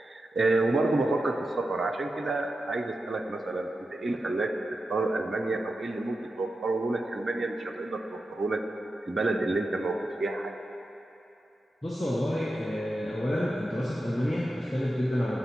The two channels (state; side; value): normal; both; correlation 0.91